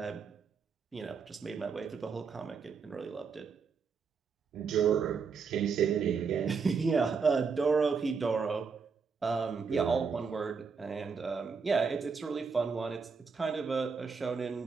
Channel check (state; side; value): quieter; left; 5.5 dB